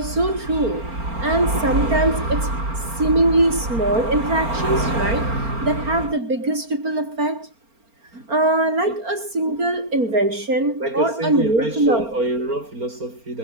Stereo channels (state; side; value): late; left; 4.4 ms